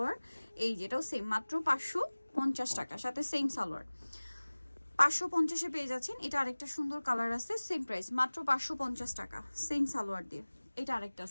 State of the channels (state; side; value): inverted; both; correlation -1.00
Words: এই যেটাও সেম, মাত্র 550 টাকা, সাথে সেম সালোয়ার 550 এ পেয়ে যাচ্ছেন। এটা আরেকটা সুন্দর কালার আছে, সেম প্রাইস মাত্র 550 টাকা, সেম সালোয়ার দিয়ে। এটা আরেকটা